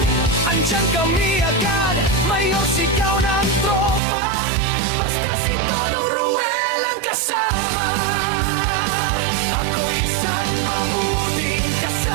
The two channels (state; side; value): drops out; left; at 4.0 s